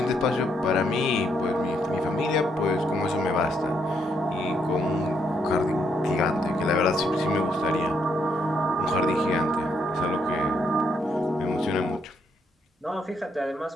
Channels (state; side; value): normal; both; correlation 0.75